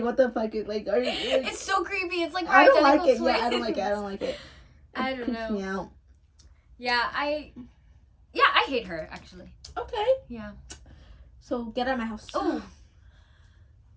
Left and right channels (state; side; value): identical; both; correlation 1.00